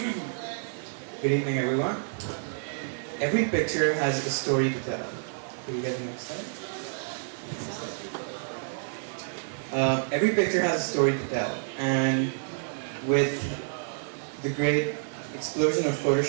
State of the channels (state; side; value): silent; left; digital silence